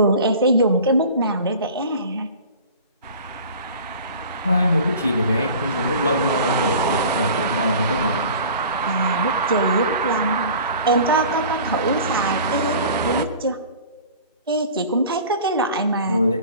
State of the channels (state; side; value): inverted; both; correlation -0.42